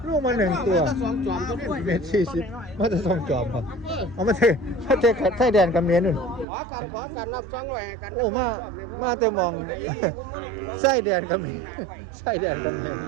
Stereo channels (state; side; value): drops out; left; at 6.5 s